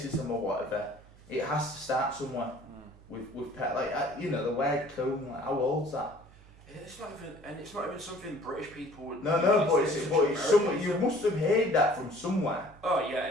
or whatever, it has to start somewhere. With the word coon. How old's that? It's not even something British people would. No, but it's somewhere. You must have heard that from somewhere. Oh yeah,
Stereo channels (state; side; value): noise; right; hum, 23 dB below the sound